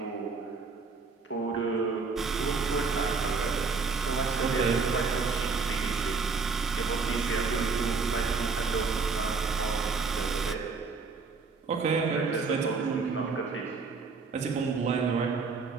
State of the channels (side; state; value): left; quieter; 4.6 dB